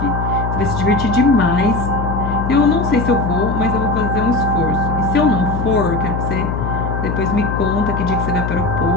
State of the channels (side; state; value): left; noise; hum, 3 dB below the sound